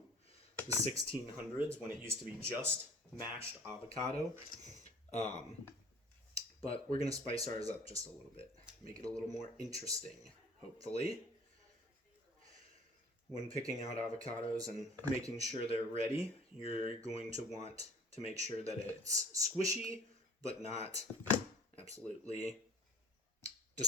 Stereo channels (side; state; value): both; normal; correlation 0.48